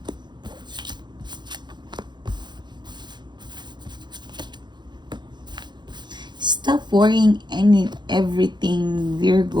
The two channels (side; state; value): left; late; 0.21 ms